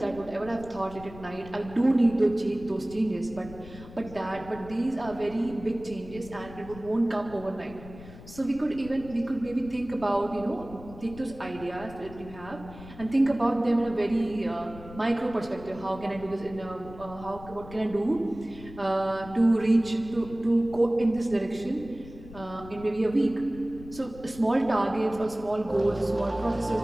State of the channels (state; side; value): noise; left; rumble, 16 dB below the sound